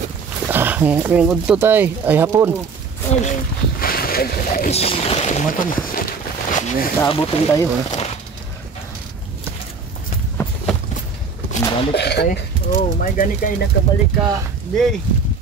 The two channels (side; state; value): left; quieter; 5.0 dB